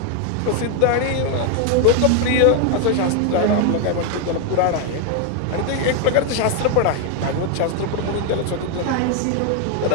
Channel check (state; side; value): different; both; correlation 0.01